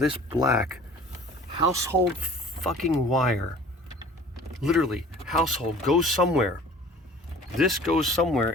black household fucking wire, literally household goes somewhere. This goes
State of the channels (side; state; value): both; normal; correlation 0.47